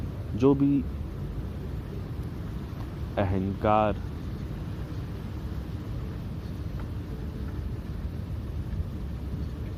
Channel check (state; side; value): identical; both; correlation 1.00